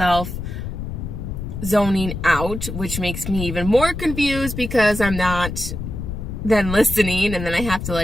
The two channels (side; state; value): left; noise; rumble, 6 dB below the sound